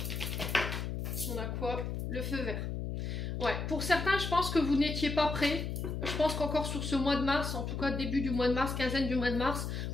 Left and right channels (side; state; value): left; noise; hum, 3 dB below the sound